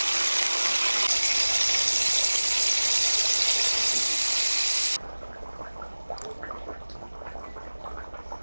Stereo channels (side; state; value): both; inverted; correlation -1.00